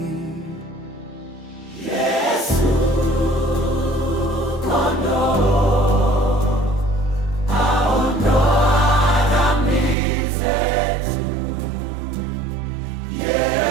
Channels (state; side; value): drops out; left; at 10.0 s